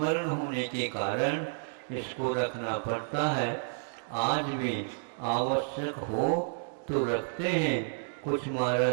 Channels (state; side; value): silent; left; digital silence